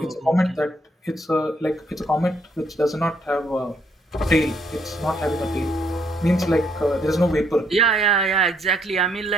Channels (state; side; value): normal; both; correlation 0.71